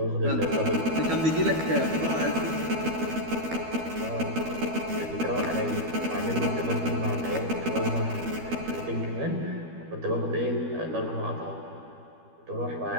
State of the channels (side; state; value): left; late; 12 ms